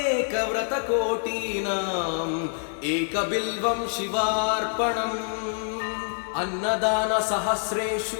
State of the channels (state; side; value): silent; right; 61 dB below the other